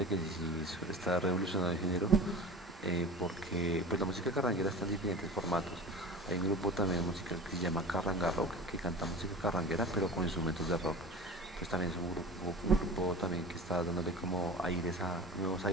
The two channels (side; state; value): both; normal; correlation 0.35